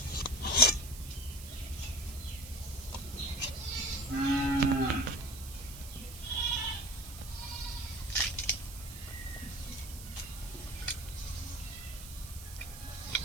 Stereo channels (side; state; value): right; noise; hiss, 13 dB below the sound